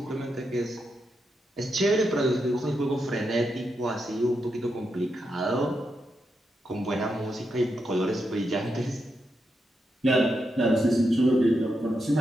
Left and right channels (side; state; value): both; normal; correlation 0.84